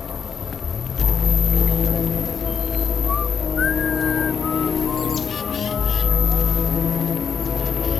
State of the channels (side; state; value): right; quieter; 6.6 dB